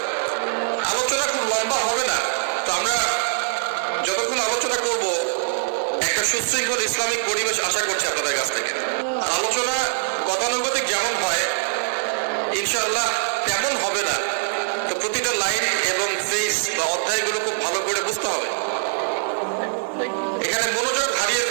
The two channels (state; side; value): silent; left; 55 dB below the other